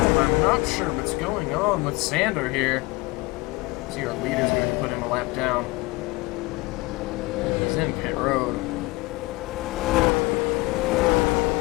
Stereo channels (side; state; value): right; quieter; 23.6 dB